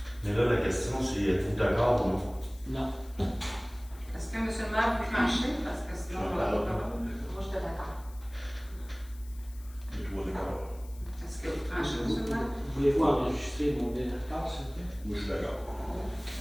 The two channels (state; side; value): noise; left; hiss, 23 dB below the sound